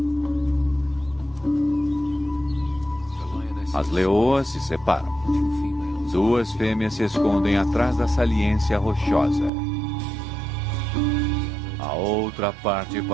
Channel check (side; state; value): left; drops out; at 9.5 s